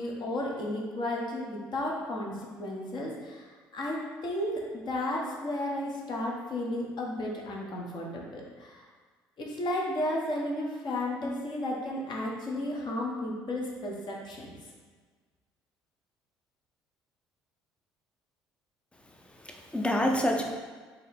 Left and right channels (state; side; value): normal; both; correlation 0.66